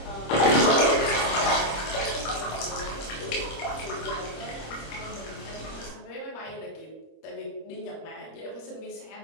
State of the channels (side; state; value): right; late; 25 ms